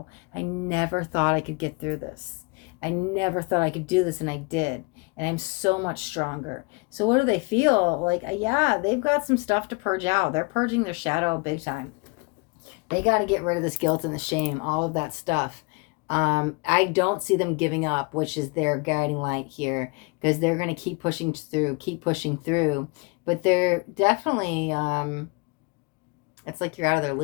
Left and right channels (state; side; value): quieter; right; 29.5 dB